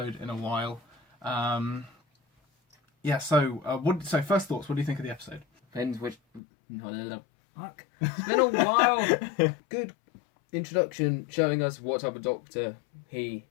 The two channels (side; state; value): right; drops out; at 6.4 s